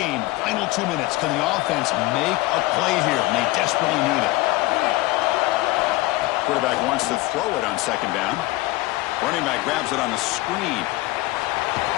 final 2 minutes. Can the offense make a play here? And they desperately need it. Quarterback wants to throw it on second down. Running back grabs it on a screen.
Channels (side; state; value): right; quieter; 19.8 dB